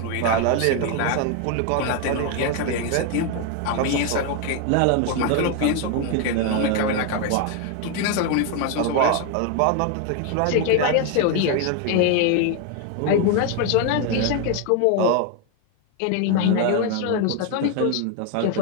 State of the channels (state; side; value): different; both; correlation 0.01